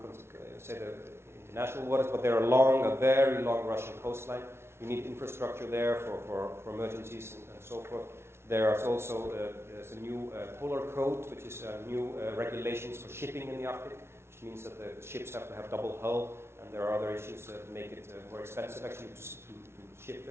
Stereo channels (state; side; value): late; left; 0.12 ms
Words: say the international waters, but there are a very long Russian coastline. You need infrastructure there for emergencies and so forth. There's also there's a new polar code, which is new regulations for shipping in the Arctic, which means that the ships have to have double hull. And there are other issues that make it more expensive actually to ship